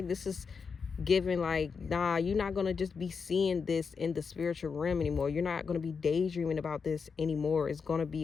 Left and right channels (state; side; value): quieter; right; 5.6 dB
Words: this is giving like, nah, you're not going to just be seeing this in the spiritual realm anymore. You're not going to be daydreaming about this anymore. It's going to